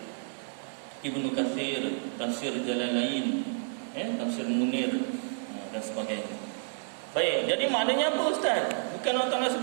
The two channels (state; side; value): silent; left; digital silence